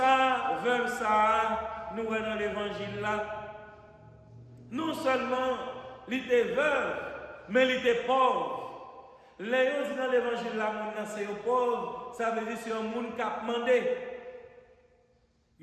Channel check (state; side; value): identical; both; correlation 1.00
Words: vers ça, nous sommes dans l'évangile là. Non seulement il était veuve, mais il était pauvre. Les gens disent dans l'évangile là, c'est un pauvre, ça veut dire que c'est un monde qui a demandé.